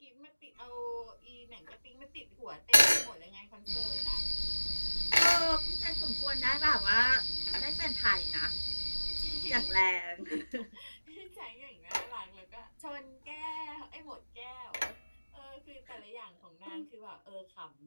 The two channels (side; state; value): both; inverted; correlation -1.00